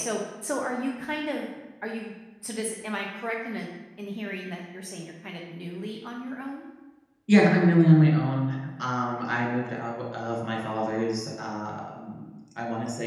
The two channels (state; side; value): identical; both; correlation 1.00